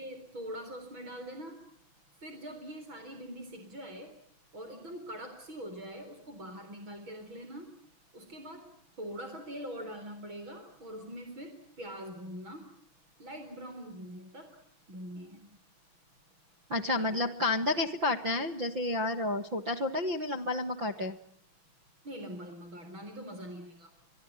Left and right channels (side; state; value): left; late; 6.1 ms